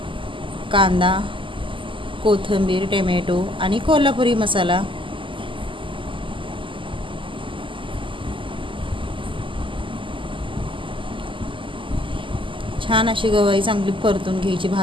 कांदा, कोथिंबीर, टोमॅटो आणि कोल्हापुरी मसाला. छान अशी गवारी चांगली परतून घ्यायची,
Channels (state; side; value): late; left; 0.25 ms